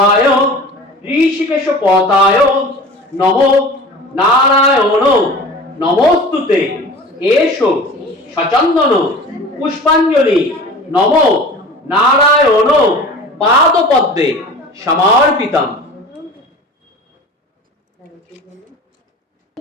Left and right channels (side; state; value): both; normal; correlation 0.39